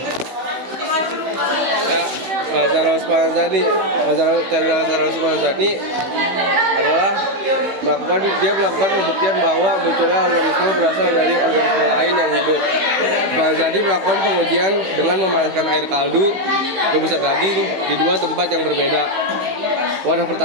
Lazarus Spallanzani adalah dia melakukan pembuktian bahwa munculnya organisme berasal dari organisme lain yang hidup. Spallanzani melakukan pengujian dengan memanaskan air kaldu rebusan daging di 2 tempat yang berbeda. Wadah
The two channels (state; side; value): late; left; 15 ms